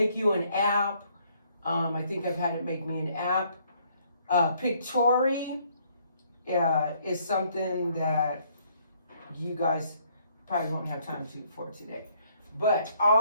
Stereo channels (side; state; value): both; inverted; correlation -0.66